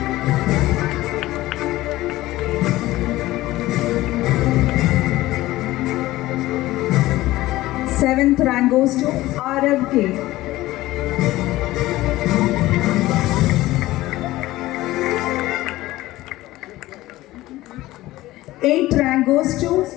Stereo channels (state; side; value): quieter; right; 17.1 dB